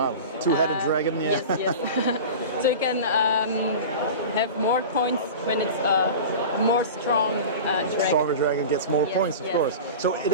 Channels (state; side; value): inverted; both; correlation -0.32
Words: wow, two-headed dragon. Yeah. Yes, yes. So you can have more points when it's a more strong dragon. Stronger dragon gets more points, of course. So it